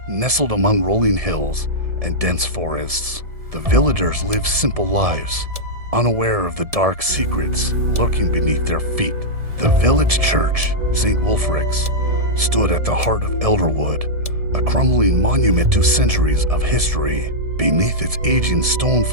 Nestled among rolling hills and dense forests, the villagers lived simple lives, unaware of the dark secrets lurking beneath their feet. The village church, St. Wulfric's, stood at the heart of Elderwood, a crumbling monument to centuries of history. Beneath its aging stone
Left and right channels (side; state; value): left; late; 1.7 ms